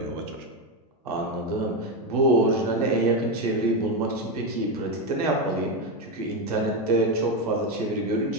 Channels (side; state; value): both; normal; correlation 0.10